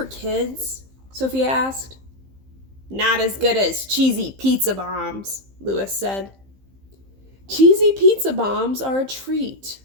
kids?" Sophia asked. "Not as good as cheesy pizza bombs," Lois said. "Cheesy pizza bombs are a treat,"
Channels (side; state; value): left; late; 15 ms